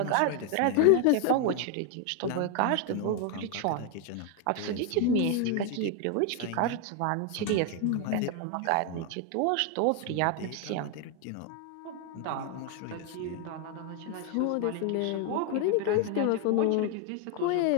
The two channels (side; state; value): both; different; correlation 0.01